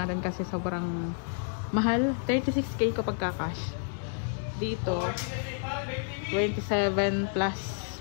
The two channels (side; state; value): right; silent; digital silence